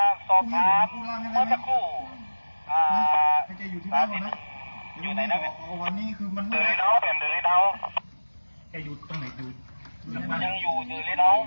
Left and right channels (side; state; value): both; inverted; correlation -1.00